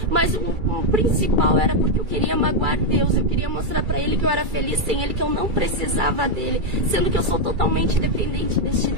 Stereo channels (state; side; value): late; left; 2.3 ms